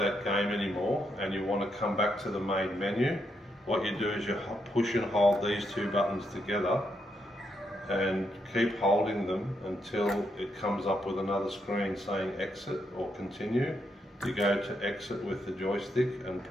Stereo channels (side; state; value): both; normal; correlation 0.80